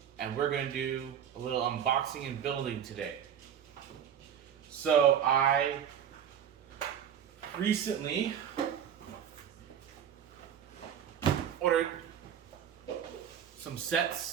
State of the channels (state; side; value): quieter; left; 8.9 dB